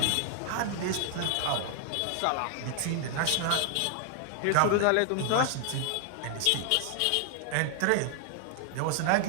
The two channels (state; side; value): different; both; correlation 0.00